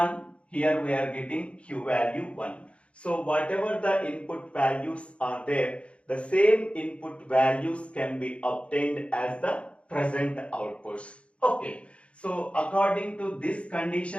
here we are getting Q value 1. So whatever the input values are there, the same input values can be obtained as the present outputs. Okay. So according to this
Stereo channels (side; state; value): right; late; 0.061 ms